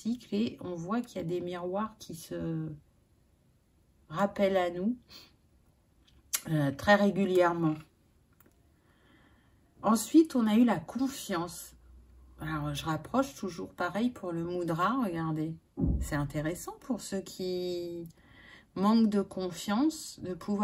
et on voit qu'il y a des miroirs qui se rappellent à nous très régulièrement. Ensuite, on a eu la confiance. Alors, je rapproche toujours pareil pour le mudra, regardez. C'est intéressant pour ceux qui manquent de confiance de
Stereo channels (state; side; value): identical; both; correlation 1.00